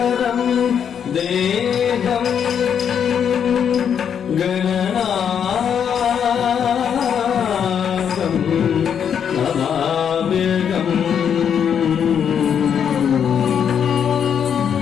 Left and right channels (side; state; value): right; quieter; 8.0 dB